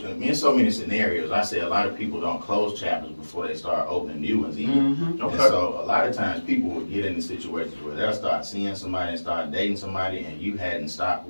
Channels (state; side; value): inverted; both; correlation -1.00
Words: in so many scenarios, I say a lot of people don't close chapters before they start opening new ones either. Mm-hmm. And so a lot of times people will get into situations where they'll start seeing somebody and start dating somebody and you hadn't stopped